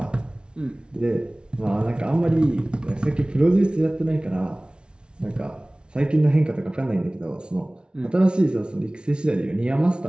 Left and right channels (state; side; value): late; left; 0.056 ms